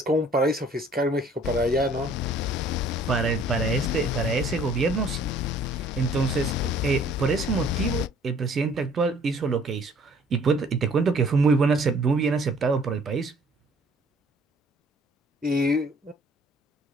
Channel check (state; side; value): normal; both; correlation 0.56